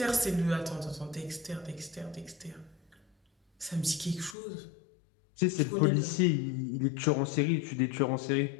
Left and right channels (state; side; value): drops out; right; at 4.4 s